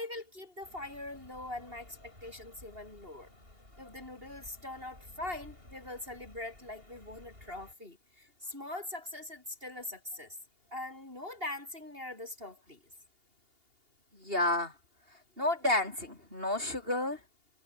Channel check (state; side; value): late; left; 2.8 ms